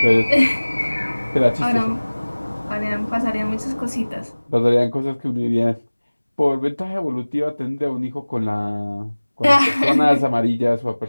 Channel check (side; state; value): both; inverted; correlation -1.00